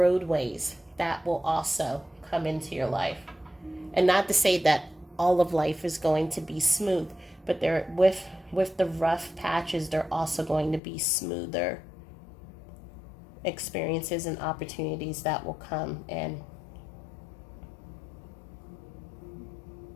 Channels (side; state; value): right; drops out; at 10.8 s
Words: that will also come into your life. And not to say that all of life is going to be smooth, but there with the rough patches, they're also going to be smoother experiences and opportunities that will come in.